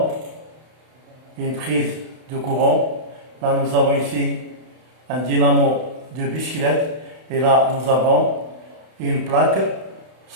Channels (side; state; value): left; late; 32 ms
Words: une prise de courant. Là nous avons ici un dynamo de bicyclette. Et là nous avons une plaque